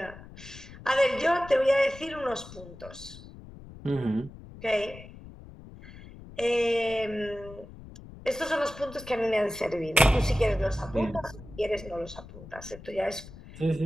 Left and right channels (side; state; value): left; noise; rumble, 16 dB below the sound